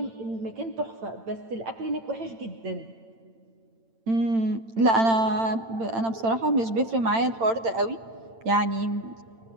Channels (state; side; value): late; left; 8.9 ms